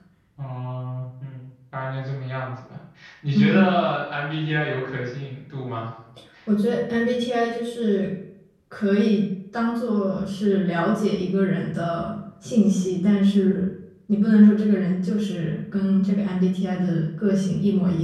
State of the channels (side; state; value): both; identical; correlation 1.00